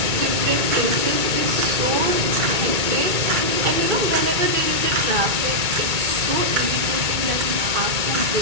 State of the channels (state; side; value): late; left; 2.2 ms